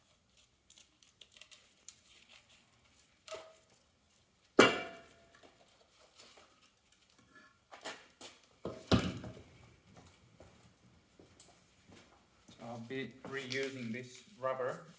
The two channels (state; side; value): identical; both; correlation 1.00